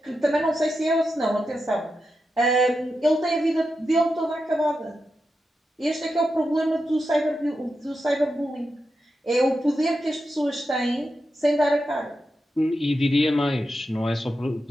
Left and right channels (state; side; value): normal; both; correlation 0.88